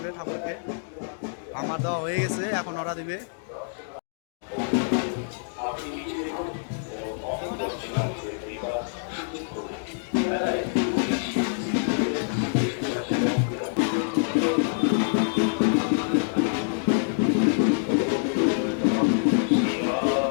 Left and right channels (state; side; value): silent; right; digital silence